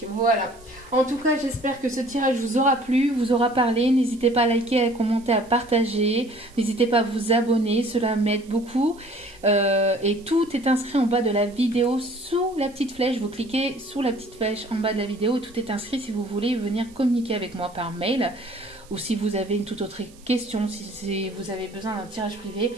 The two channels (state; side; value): noise; right; hiss, 26 dB below the sound